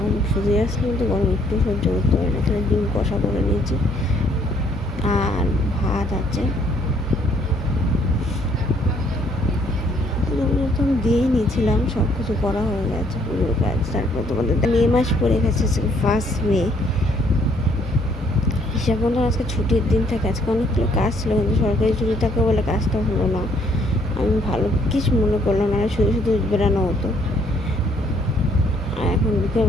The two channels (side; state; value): both; normal; correlation 0.66